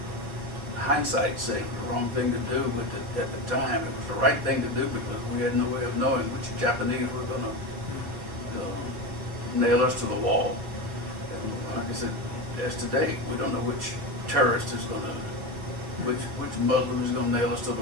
hindsight saying the wrong thing to do, but at the time it was the right thing to do because we had no way of knowing which Japanese were going to nail us to the wall. And like I said, as to date, we don't know which terrorist is going to, which Muslim is going to nail us to the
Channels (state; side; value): late; left; 4.2 ms